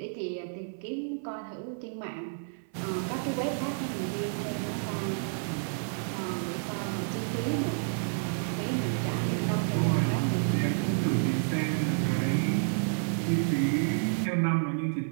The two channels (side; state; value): left; silent; 58 dB below the other